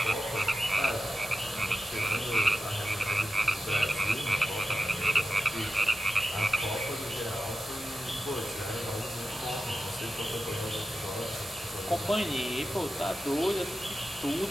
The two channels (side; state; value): both; normal; correlation 0.92